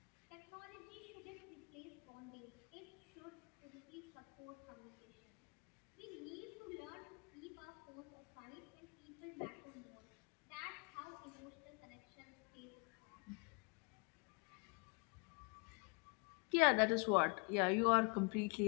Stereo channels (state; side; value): quieter; right; 33.9 dB